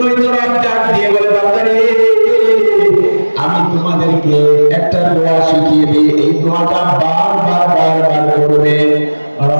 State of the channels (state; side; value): inverted; both; correlation -1.00